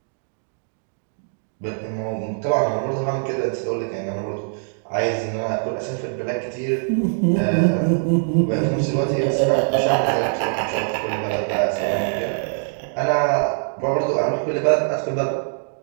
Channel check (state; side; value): silent; left; digital silence